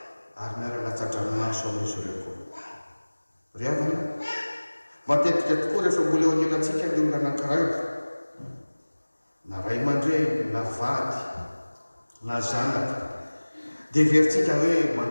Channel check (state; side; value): inverted; both; correlation -1.00